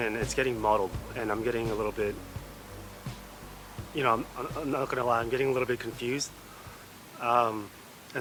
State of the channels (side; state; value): both; identical; correlation 1.00